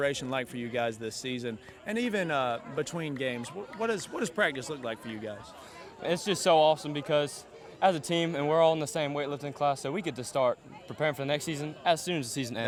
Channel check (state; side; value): identical; both; correlation 1.00